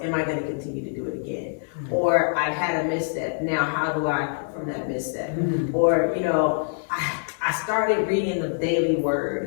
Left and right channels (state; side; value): silent; right; digital silence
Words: am I going to continue to do it again? Or I had a misstep, now how do I from that misstep? Or, I started reading the daily